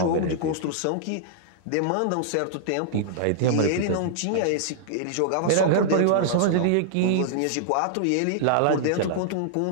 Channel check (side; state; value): both; different; correlation -0.01